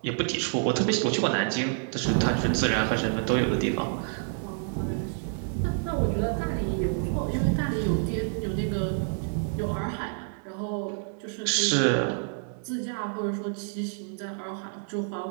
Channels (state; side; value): silent; left; 59 dB below the other